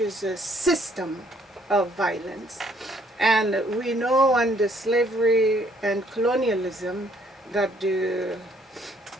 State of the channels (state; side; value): normal; both; correlation 0.65